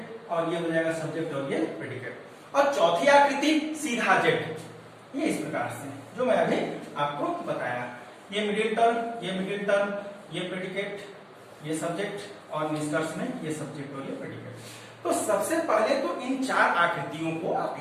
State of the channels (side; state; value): both; identical; correlation 1.00